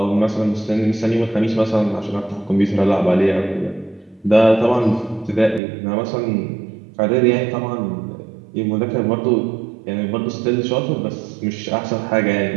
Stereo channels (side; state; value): left; drops out; at 5.6 s